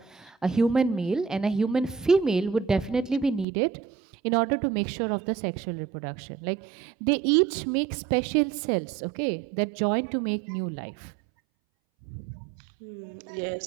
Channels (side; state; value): left; drops out; at 3.5 s